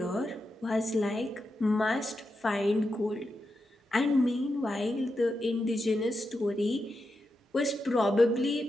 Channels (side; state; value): both; normal; correlation 0.87